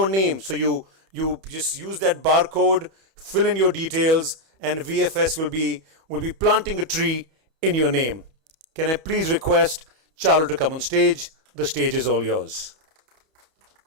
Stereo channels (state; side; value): late; left; 31 ms